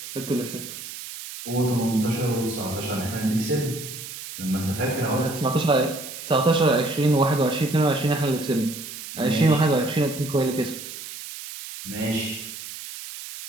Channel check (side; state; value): right; noise; hiss, 11 dB below the sound